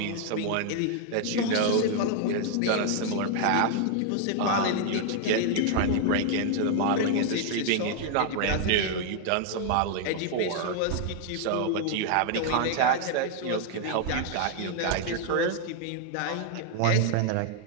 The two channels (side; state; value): both; different; correlation 0.00